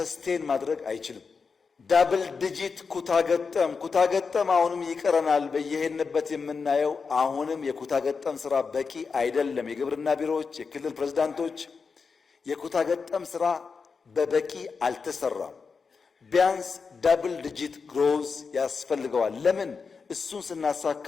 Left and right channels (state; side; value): quieter; right; 5.1 dB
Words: ማድረግ አይችልም። ዳብል ዲጂት ኩታገጠም አሁንም ይቀረናል። በየሄድንበት የምናየው አሁንም የኩታገጠም ስራ በቂ አይደለም። የግብርና ቢሮዎች፣ የክልል ፕሬዝዳንቶች የኩታገጠም ስራ በበቂ አልተሰራም። ቢያንስ ዳብል ዲጂት ግሮዝ ያስፈልገዋል። ለምን? እሱን ስናሳካ